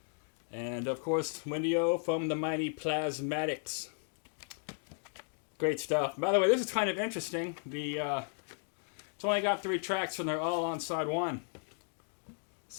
And, of course, Wendy O from the mighty Plasmatics. Great stuff. By the way, this is kind of interesting. It's only got 3 tracks, and they're all on side 1.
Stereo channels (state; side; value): silent; right; 54 dB below the other